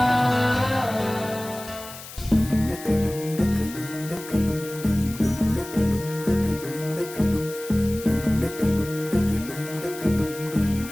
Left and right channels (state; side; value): noise; left; hiss, 14 dB below the sound